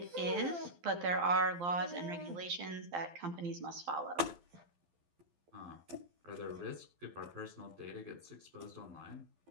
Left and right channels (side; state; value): left; late; 12 ms